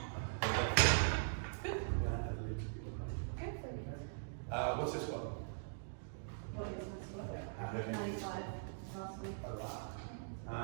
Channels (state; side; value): silent; left; digital silence